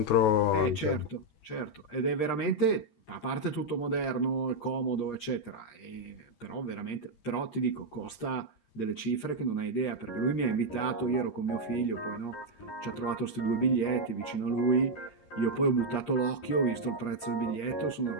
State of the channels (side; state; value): right; late; 13 ms